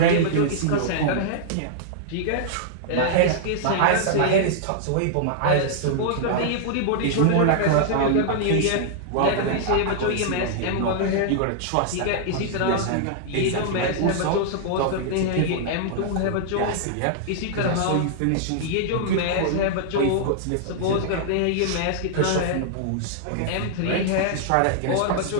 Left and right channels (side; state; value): both; different; correlation -0.01